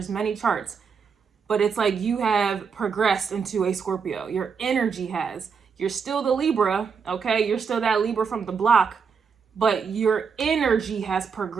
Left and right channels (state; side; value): quieter; left; 6.0 dB